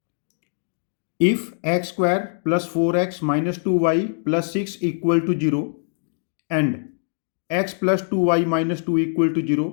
if x square plus 4x minus 2y plus 6 equal to 0 and x plus 2y minus 2 equal to 0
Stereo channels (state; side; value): silent; right; digital silence